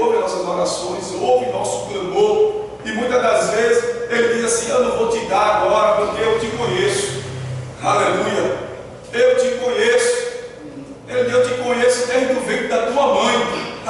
nossas orações, ouve nosso clamor, e muitas das vezes Ele diz assim: eu não vou te dar agora, porque eu te conheço. Aleluia. Eu te conheço. Ele diz: eu te conheço desde o ventre da tua mãe.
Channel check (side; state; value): both; identical; correlation 1.00